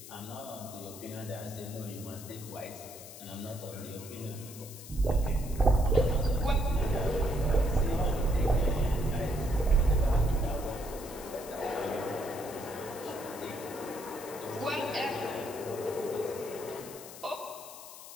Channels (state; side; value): noise; left; hiss, 14 dB below the sound